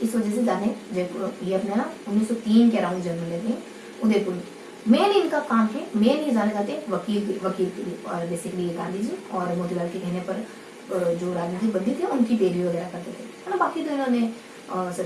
वजह से जाने, जयपुर ये अपने ना 1903 के अराउंड जन्म लेते हैं उदयपुर में। मेन इनका काम है, मेन ये जाने जाते हैं वकील के लिए। और बेसिकली ये गांधी जी और मोतीलाल के कहने पर जो राजनीतिक बंदी थे उनकी पैरवी वगैरह करते थे, है ना। बाकी तो इन्होंने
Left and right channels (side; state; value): both; identical; correlation 1.00